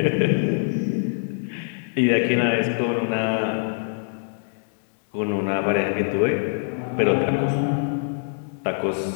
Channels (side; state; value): right; silent; digital silence